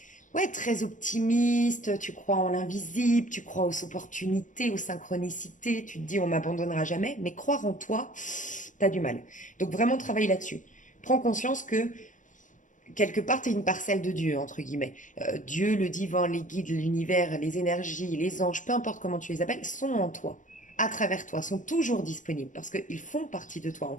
ouais, très optimiste, tu crois en l'invisible, tu crois aux opportunités, aux synchronicités, tu te dis on m'abandonnera jamais, mais croire en toi, t'as du mal. Donc vraiment travaille là-dessus. Prends conscience que quelque part, tu es une parcelle de Dieu, entre guillemets. Dieu, le divin, les guides, l'univers, les énergies, les anges, peu importe comment tu les appelles, sont en toi, à travers toi, sont toujours disponibles parce qu'ils font partie de toi, on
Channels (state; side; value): late; right; 0.37 ms